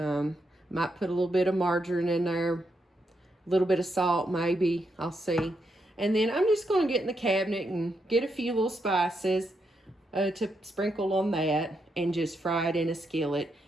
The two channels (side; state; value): both; normal; correlation 0.81